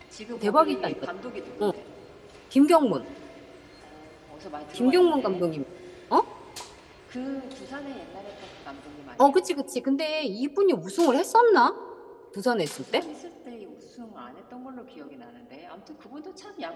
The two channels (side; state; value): both; identical; correlation 1.00